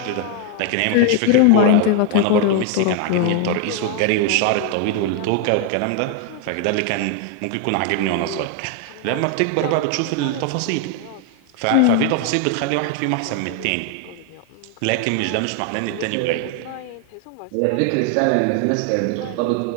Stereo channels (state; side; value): different; both; correlation 0.00